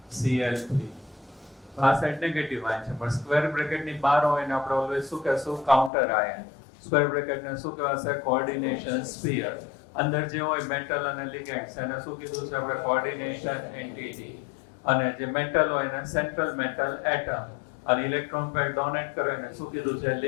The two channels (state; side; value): drops out; right; at 5.9 s